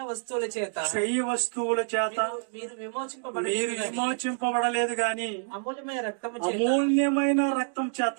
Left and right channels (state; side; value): silent; left; digital silence